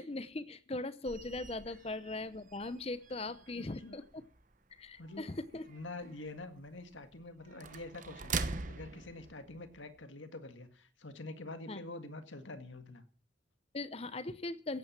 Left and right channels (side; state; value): both; normal; correlation 0.39